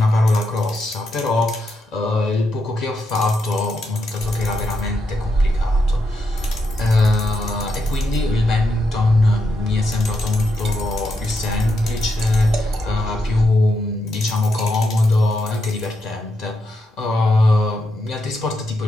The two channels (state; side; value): normal; both; correlation 0.83